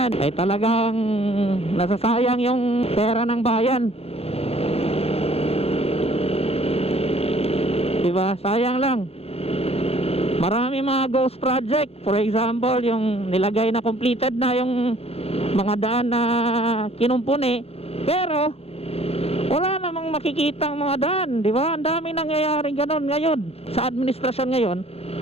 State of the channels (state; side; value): late; right; 0.29 ms